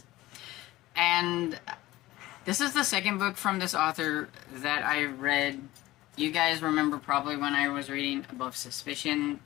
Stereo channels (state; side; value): quieter; right; 17.4 dB